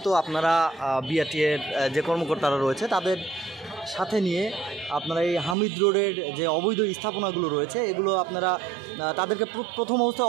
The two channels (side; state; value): left; drops out; at 5.6 s